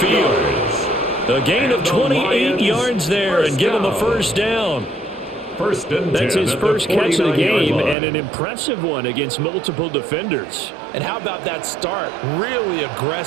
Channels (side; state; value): left; drops out; at 8.0 s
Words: A gain of 28 yards there and give him a first down. That's his first catch of the game, and an impressive one against multiple defenders. And how about that start? Really